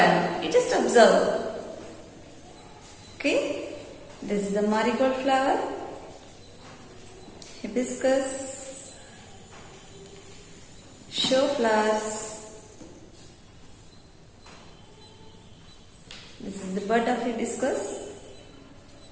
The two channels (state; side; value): identical; both; correlation 1.00